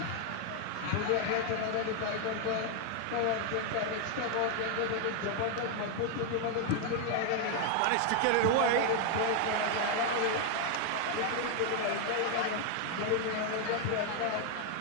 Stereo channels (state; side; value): different; both; correlation 0.00